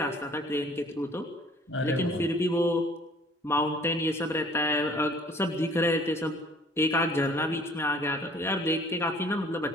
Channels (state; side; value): normal; both; correlation 0.54